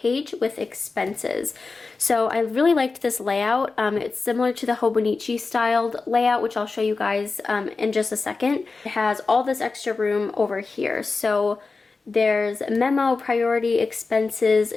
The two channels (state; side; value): quieter; right; 4.1 dB